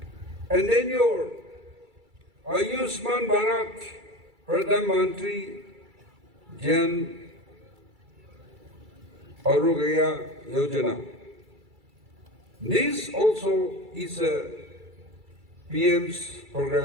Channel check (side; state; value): left; late; 2.3 ms